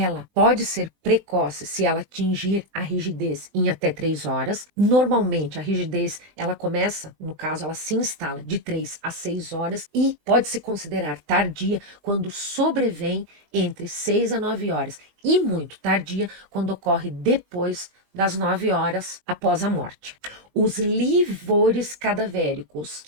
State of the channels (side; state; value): left; late; 20 ms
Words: pode ser precoce se ela atingir a rigidez em até 3 horas. Normalmente, a rigidez, ela começa, no caso, ela se instala de 3 a 6 horas e pode se considerar tardia quando sobrevém entre 6 a 9 horas e muito tardia quando ocorre depois das 9 horas após a morte. Os livores cadavéricos,